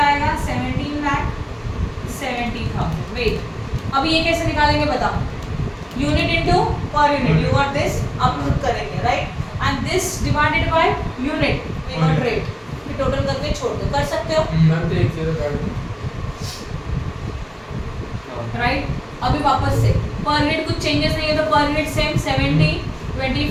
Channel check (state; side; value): identical; both; correlation 1.00